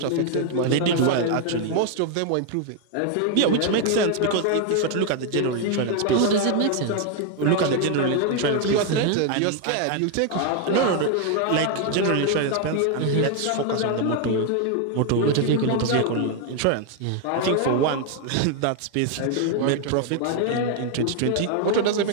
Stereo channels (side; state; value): both; different; correlation 0.01